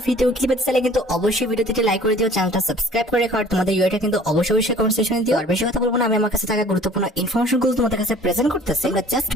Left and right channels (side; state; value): both; normal; correlation 0.50